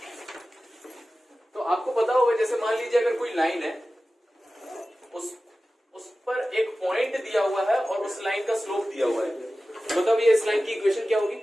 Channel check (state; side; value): normal; both; correlation 0.95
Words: तो आपको पता होगा जैसे मान लीजिए अगर कोई लाइन है, उस पर एक पॉइंट दिया हुआ है और उस लाइन का स्लोप दिया हुआ है, मतलब ये इस लाइन की इक्वेशन क्या होगी?